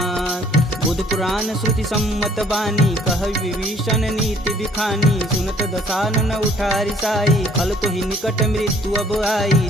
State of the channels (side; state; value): both; normal; correlation 0.59